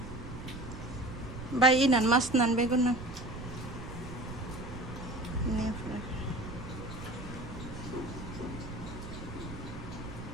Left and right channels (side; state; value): right; noise; rumble, 10 dB below the sound